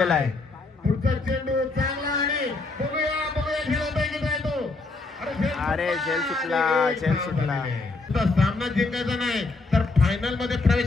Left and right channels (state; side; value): quieter; right; 3.6 dB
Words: आहे. पुढचा चेंडू चांगला आणि बघूया खेळत आहे तो. अरे झेल सुटला. सामना जिंकायचा नाही तर फायनल मध्ये